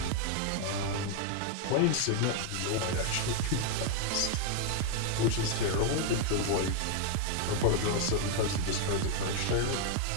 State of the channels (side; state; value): both; different; correlation 0.00